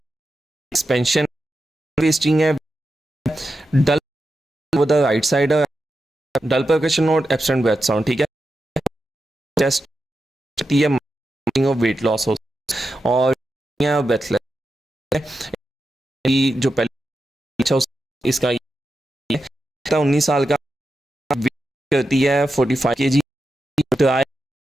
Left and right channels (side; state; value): both; normal; correlation 0.89